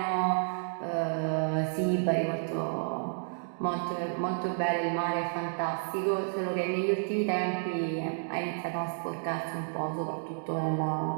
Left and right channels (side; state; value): left; silent; digital silence